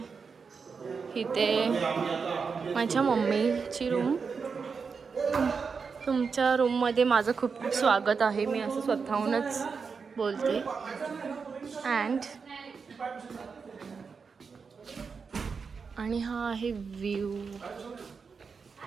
इथे माझ्या मम्मीची रूम. तुमच्या रूममध्ये माझं खूप खूप स्वागत आहे. मी असं स्वतःहूनच बोलते. आणि हा आहे व्ह्यू.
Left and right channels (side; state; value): left; quieter; 5.4 dB